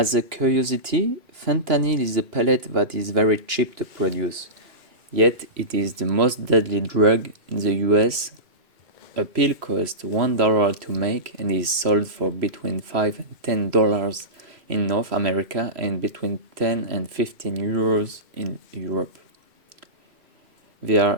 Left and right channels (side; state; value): left; late; 2.6 ms